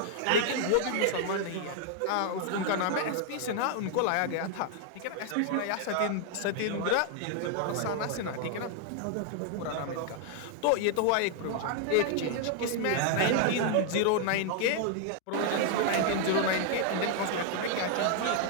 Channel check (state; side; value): different; both; correlation 0.00